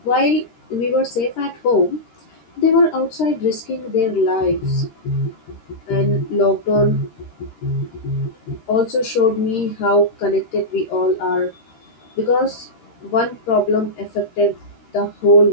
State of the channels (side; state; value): right; late; 13 ms